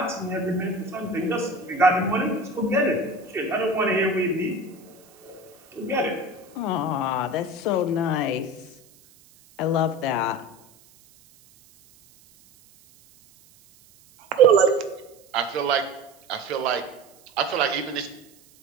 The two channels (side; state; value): right; noise; hiss, 28 dB below the sound